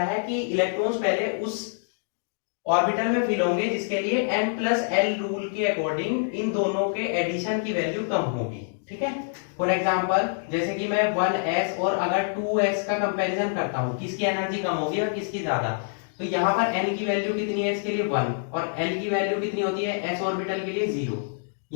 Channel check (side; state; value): right; silent; digital silence